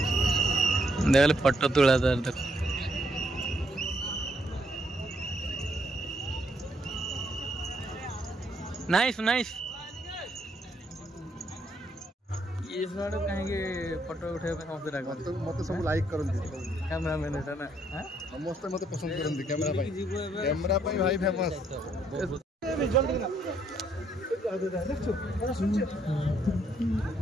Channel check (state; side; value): normal; both; correlation 0.72